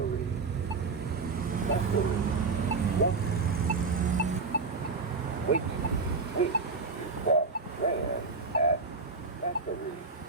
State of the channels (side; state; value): left; quieter; 4.3 dB